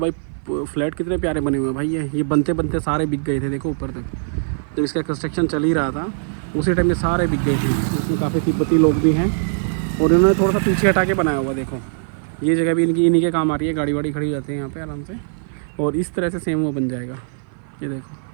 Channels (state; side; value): silent; left; 55 dB below the other